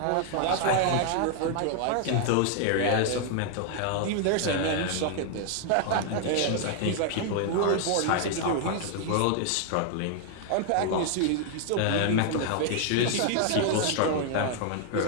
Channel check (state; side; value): different; both; correlation 0.00